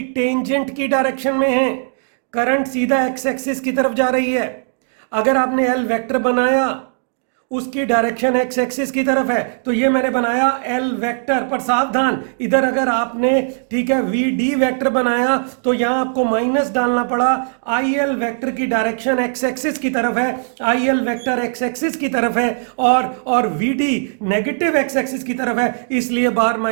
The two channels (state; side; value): silent; left; 67 dB below the other